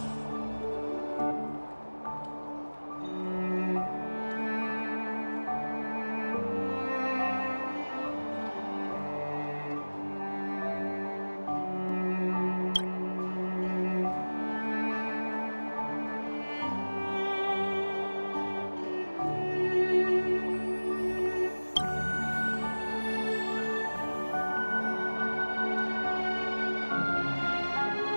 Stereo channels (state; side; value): inverted; both; correlation -1.00